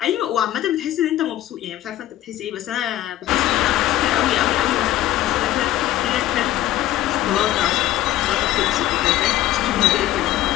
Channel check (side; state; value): right; quieter; 13.9 dB